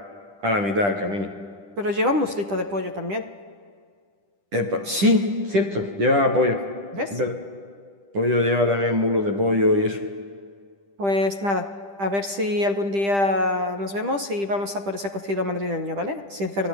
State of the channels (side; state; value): left; late; 10 ms